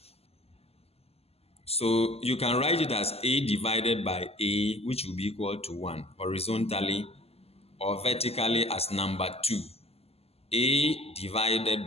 so you can write it as a divided by a, which will be equal to 1 horizontally, or vertically as number 2. A divided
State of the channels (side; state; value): right; late; 0.29 ms